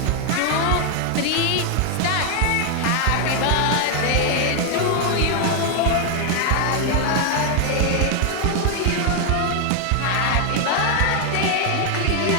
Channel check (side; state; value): both; different; correlation 0.01